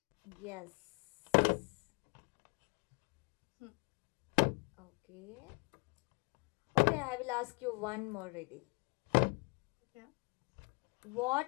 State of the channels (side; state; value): right; quieter; 32.2 dB